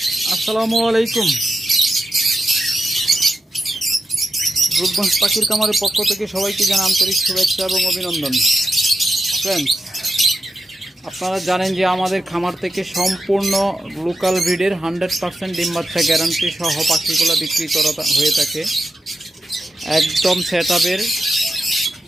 আসসালামু আলাইকুম। রূপগঞ্জ পাখির খামারের পক্ষ থেকে সবাইকে জানাই আন্তরিক শুভেচ্ছা এবং অভিনন্দন। ফ্রেন্ডস, আপনারা জানেন যে আমাদের খামার থেকে সম্পূর্ণ লোকাল ব্রিডের 100% ডিম বাচ্চা গ্যারান্টি সহ পাখিগুলো বিক্রি করা হয়ে থাকে। একদম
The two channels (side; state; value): both; normal; correlation 0.88